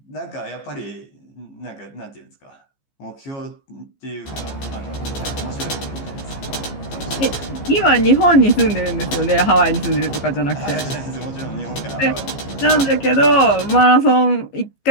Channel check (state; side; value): late; right; 15 ms